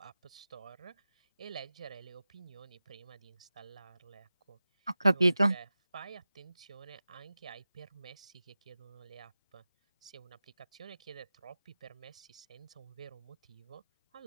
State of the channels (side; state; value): both; inverted; correlation -0.94